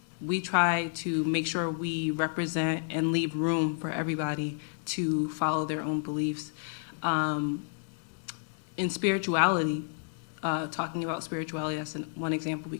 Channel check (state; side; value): silent; right; digital silence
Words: we try to make sure we represent and leave room for everybody to follow their own beliefs. In spirituality, talking about spirituality, that's one example we